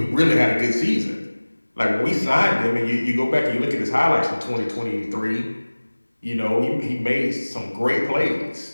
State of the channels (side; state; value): both; inverted; correlation -1.00